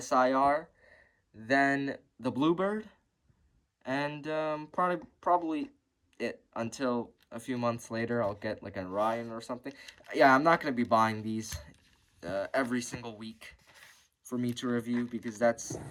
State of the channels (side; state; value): both; identical; correlation 1.00